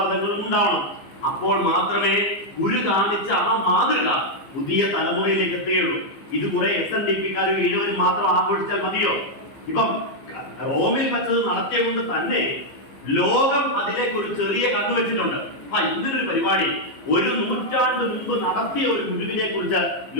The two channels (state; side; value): late; right; 15 ms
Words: ഉണ്ടാവണം. അപ്പോൾ മാത്രമേ ഗുരു കാണിച്ച ആ മാതൃക പുതിയ തലമുറയിലേക്ക് എത്തുകയുള്ളൂ. ഇത് കുറെ SNDP-ക്കാരും ഈഴവരും മാത്രം ആഘോഷിച്ചാൽ മതിയോ? ഇപ്പം റോമിൽ വച്ചത് നടത്തിയ കൊണ്ട് തന്നെ ലോകം അതിലേക്ക് ഒരു ചെറിയ കണ്ണു വെച്ചിട്ടുണ്ട്. ഇങ്ങനൊരു പരിപാടി 1 നൂറ്റാണ്ട് മുമ്പ് നടത്തിയ ഒരു ഗുരുവിനെ കുറിച്ച്